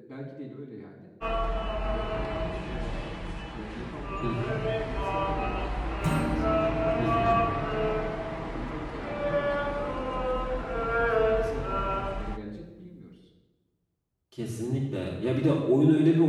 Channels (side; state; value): both; identical; correlation 1.00